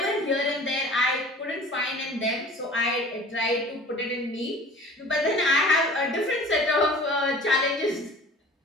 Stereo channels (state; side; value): normal; both; correlation 0.44